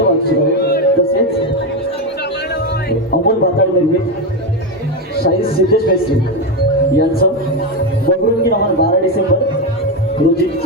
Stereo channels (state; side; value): normal; both; correlation 0.11